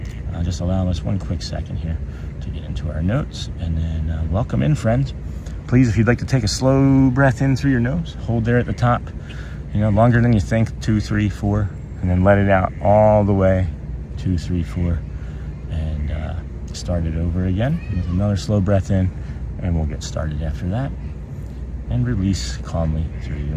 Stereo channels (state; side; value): identical; both; correlation 1.00